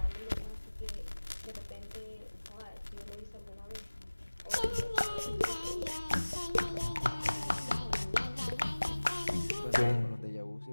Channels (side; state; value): both; inverted; correlation -1.00